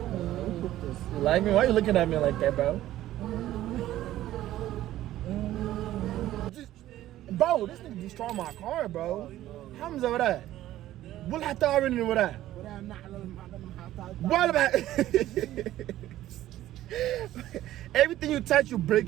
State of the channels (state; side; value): quieter; left; 14.0 dB